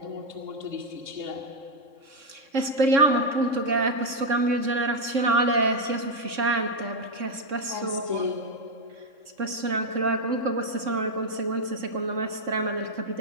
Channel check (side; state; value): left; late; 3.7 ms